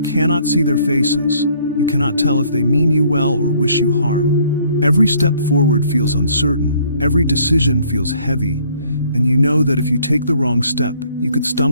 cannot see their faces. You cannot tell if they mean you well or wish you harm. Every step forward feels uncertain, every decision feels heavy, and you know that if you take the wrong step, you could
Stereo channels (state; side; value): inverted; both; correlation -0.62